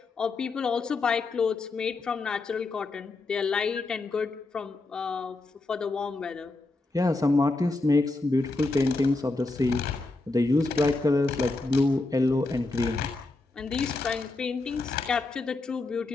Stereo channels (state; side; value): quieter; right; 3.3 dB